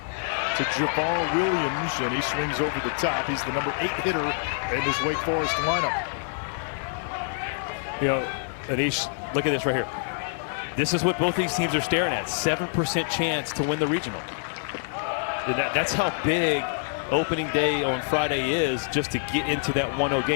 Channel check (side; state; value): right; silent; digital silence